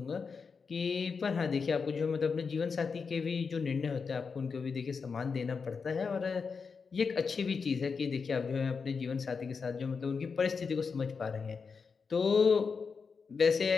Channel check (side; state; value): right; quieter; 5.3 dB